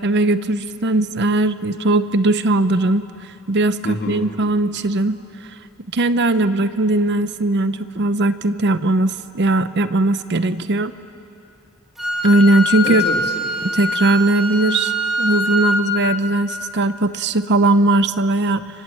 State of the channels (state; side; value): normal; both; correlation 0.52